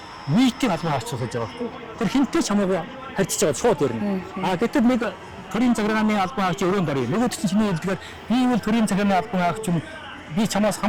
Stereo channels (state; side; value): identical; both; correlation 1.00